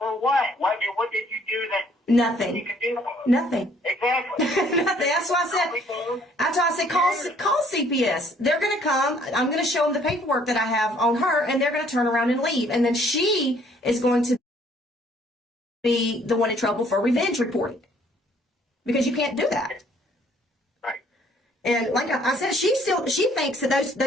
what? What did you do that Nothing. you could do? Nothing. Exactly. Nothing. That's why I said, call CPS. They're going to come. I'm going to show them the paperwork that I have on her, and they're going to turn around and leave. And then she is going to be the one in trouble for revenge reporting, because you can't do that. Right. And like I said, she thinks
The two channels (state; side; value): normal; both; correlation 0.61